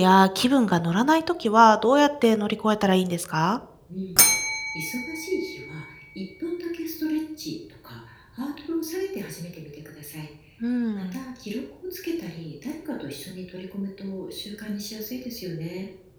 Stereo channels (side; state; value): both; identical; correlation 1.00